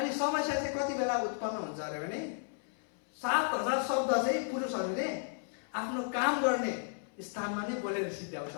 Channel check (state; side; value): silent; right; 55 dB below the other